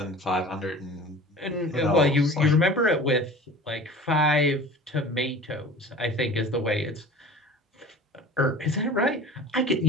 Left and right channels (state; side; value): normal; both; correlation 0.40